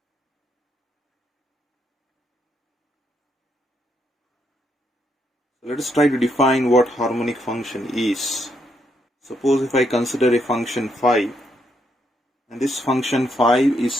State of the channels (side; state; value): both; normal; correlation 0.77